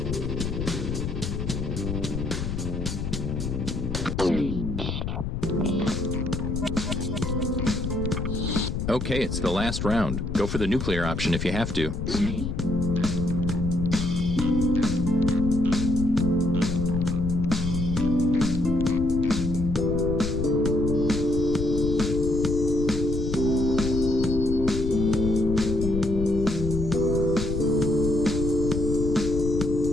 Okay, it's the last round. Go for the nuclear option if you have to.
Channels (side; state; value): left; noise; rumble, 4 dB below the sound